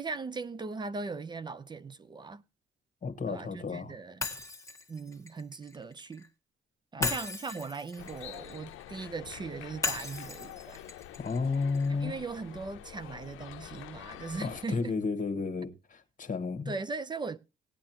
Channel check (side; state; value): both; normal; correlation 0.56